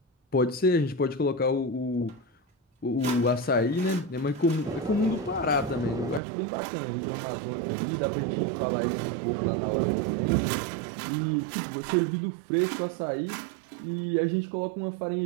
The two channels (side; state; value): left; drops out; at 6.2 s